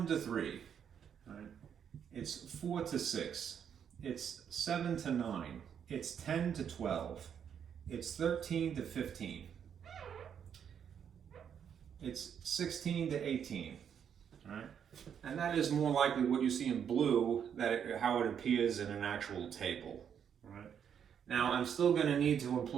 to 3, right? It's 4 to 6, it's 7 to 9, it's 10 to 12, it's 13 to 15, it's 16 to 18, right? And that is more likely what you see in blue, how it appears in an actual table, right? Now, I'm still going to need to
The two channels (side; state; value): left; quieter; 8.2 dB